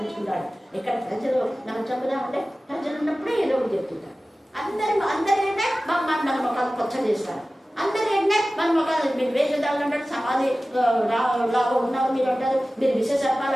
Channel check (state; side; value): normal; both; correlation 0.96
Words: ఇక్కడ ప్రజలు మనం చెప్పుదామంటే ప్రజలు ఉన్నప్పుడే ఏదో ఒకటి చెప్తుంటారు. అందరి ఏంటంటే మన మొక్కలు కొచ్చ చేస్తారు. అందరు ఏంటంటే మన మొక్కలు మీరు వేషధారులు అంటాడు, సమాధి లాగా ఉన్నారు మీరు అంటారు, మీరు విశేషాలు